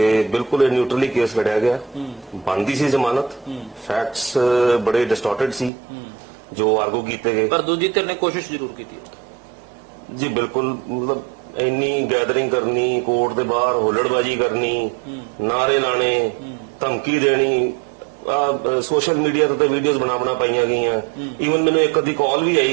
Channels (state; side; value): drops out; left; at 5.7 s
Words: ਬਿਲਕੁਲ ਇਹ ਨਿਊਟਰਲੀ ਕੇਸ ਲੜਿਆ ਗਿਆ। ਬਣਦੀ ਸੀ ਜ਼ਮਾਨਤ, ਫੈਕਟਸ ਬੜੇ ਡਿਸਟੋਰਟਡ ਸੀ ਜੋ ਆਰਗੂ ਕੀਤੇ ਗਏ, ਪਰ ਦੂਜੀ ਧਿਰ ਨੇ ਕੋਸ਼ਿਸ਼ ਜ਼ਰੂਰ ਕੀਤੀ ਜੀ। ਬਿਲਕੁਲ, ਮਤਲਬ ਇੰਨੀ ਗੈਦਰਿੰਗ ਕਰਨੀ, ਕੋਰਟ ਦੇ ਬਾਹਰ ਹੁੱਲੜਬਾਜੀ ਕਰਨੀ, ਨਾਰੇ ਲਾਣੇ, ਧਮਕੀ ਦੇਣੀ, ਸੋਸ਼ਲ ਮੀਡੀਆ ਤੇ ਵੀਡੀਓਜ਼ ਬਣਾ ਪਾਈਆਂ ਗਈਆਂ। ਈਵਨ ਮੈਨੂੰ ਇੱਕ ਅੱਧੀ ਕਾਲ ਵੀ ਆਈ